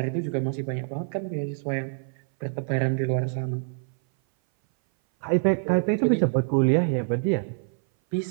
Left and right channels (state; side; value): silent; left; 58 dB below the other